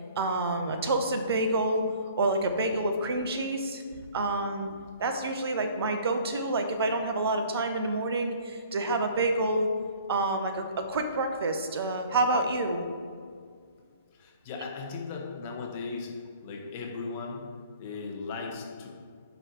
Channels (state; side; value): inverted; both; correlation -0.51